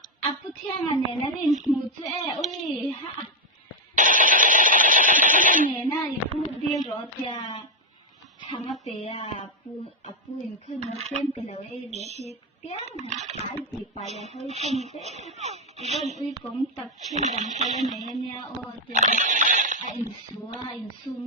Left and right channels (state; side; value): normal; both; correlation 0.02